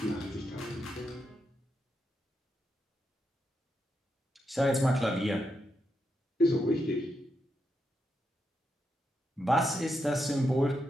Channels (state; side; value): normal; both; correlation 0.84